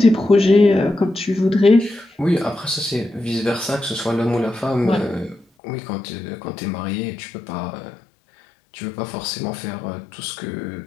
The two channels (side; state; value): right; drops out; at 5.5 s